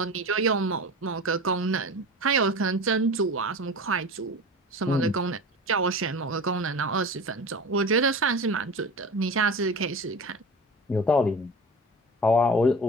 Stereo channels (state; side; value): normal; both; correlation 0.33